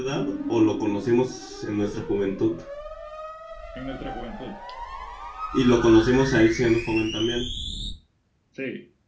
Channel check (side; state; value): both; identical; correlation 1.00